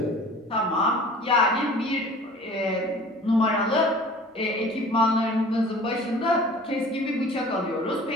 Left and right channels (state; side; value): normal; both; correlation 0.45